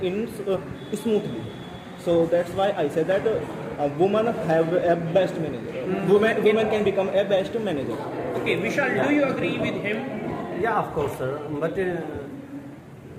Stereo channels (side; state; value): both; identical; correlation 1.00